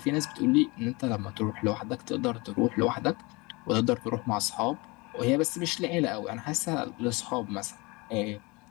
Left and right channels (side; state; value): right; quieter; 25.7 dB